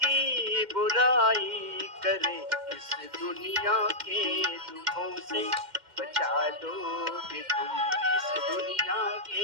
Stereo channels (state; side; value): late; left; 2.1 ms